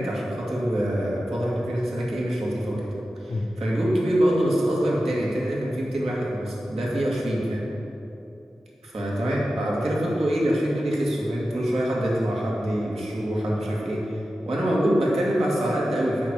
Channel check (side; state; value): both; normal; correlation 0.93